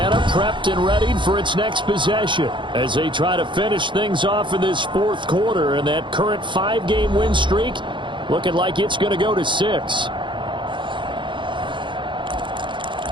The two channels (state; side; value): late; left; 0.23 ms